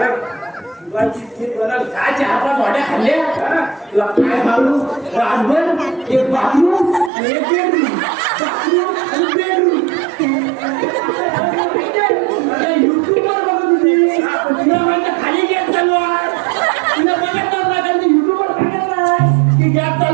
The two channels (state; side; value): drops out; left; at 7.1 s